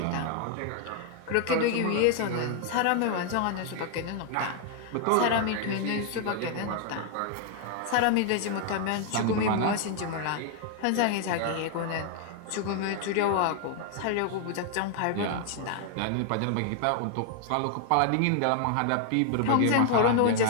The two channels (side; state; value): both; different; correlation 0.00